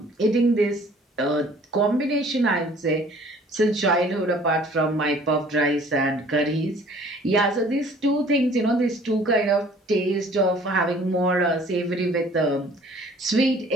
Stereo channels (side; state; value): both; normal; correlation 0.53